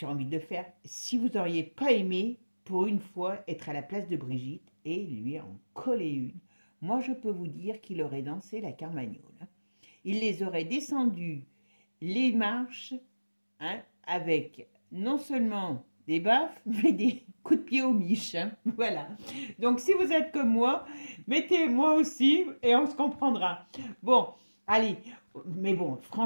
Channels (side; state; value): both; inverted; correlation -1.00